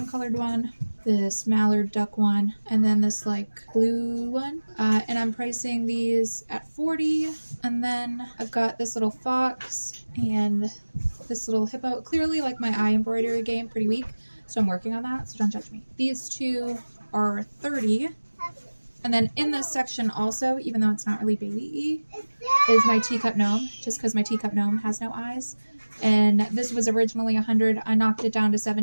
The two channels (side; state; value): both; inverted; correlation -1.00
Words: colored one, this mallard duck one, and then this like blue one, and I'm pricing these at 40. And then I've got this little fox and this little hippo. Clearly like my eye embroidery game pretty weak, so I'm working on that, so don't judge me. These 2 are 30. And then in this section also, even though it's not really baby-y, is my teacup gnome, just because my teacup gnome has no eyes. And this was originally 100. I knocked it down to